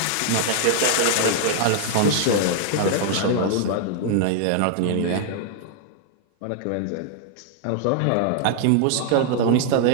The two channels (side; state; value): both; different; correlation -0.01